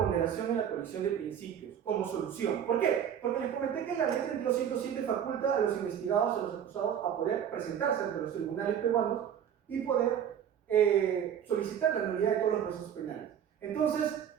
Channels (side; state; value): left; quieter; 9.0 dB